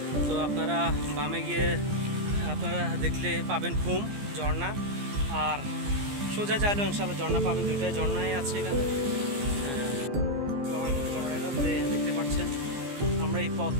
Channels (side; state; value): left; late; 15 ms